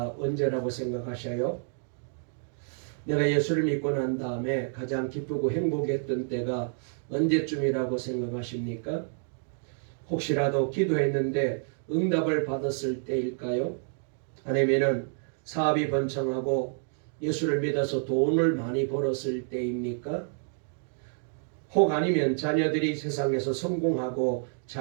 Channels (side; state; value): left; silent; 59 dB below the other